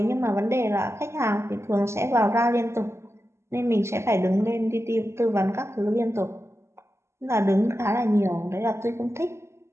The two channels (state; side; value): late; left; 0.13 ms